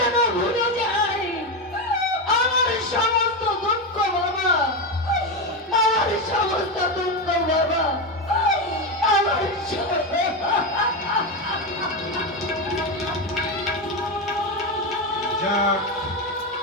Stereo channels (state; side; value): normal; both; correlation 0.12